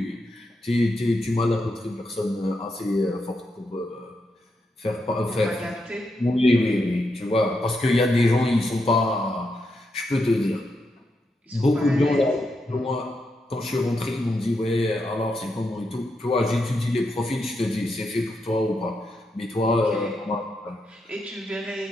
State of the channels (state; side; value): normal; both; correlation 0.83